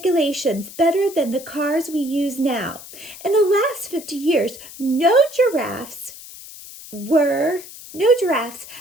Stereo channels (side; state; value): left; noise; hiss, 16 dB below the sound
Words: better than the cars we use now. In the last 50 years, no giraffes